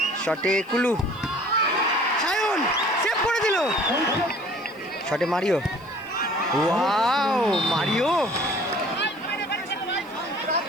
শটে কুলু, সায়ন সেভ করে দিল। শটে মারিও, ওয়াও মারিও।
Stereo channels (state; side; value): noise; left; hiss, 29 dB below the sound